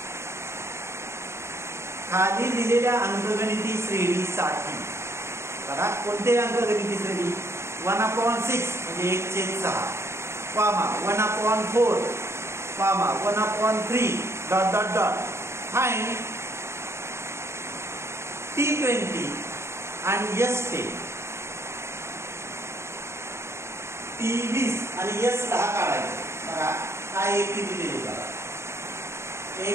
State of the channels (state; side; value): late; left; 0.13 ms